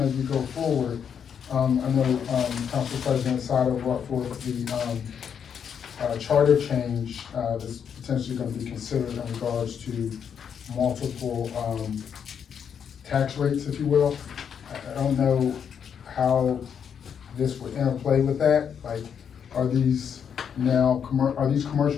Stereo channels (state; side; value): quieter; right; 7.7 dB